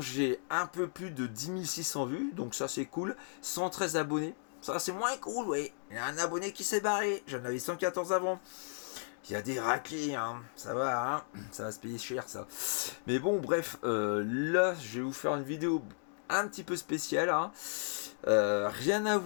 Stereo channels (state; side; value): silent; right; digital silence